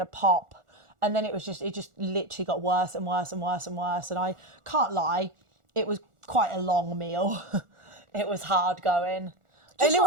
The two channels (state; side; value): late; left; 1.4 ms